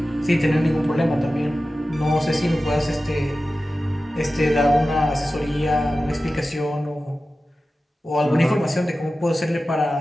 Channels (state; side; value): normal; both; correlation 0.94